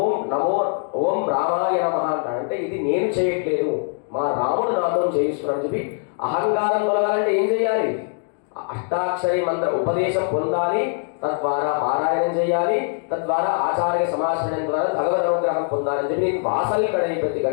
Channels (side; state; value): right; silent; 56 dB below the other